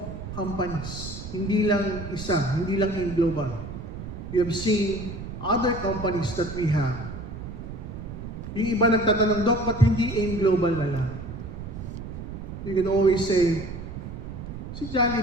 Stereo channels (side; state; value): right; noise; rumble, 9 dB below the sound